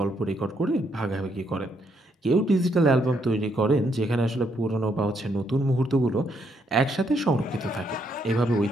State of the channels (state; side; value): normal; both; correlation 0.74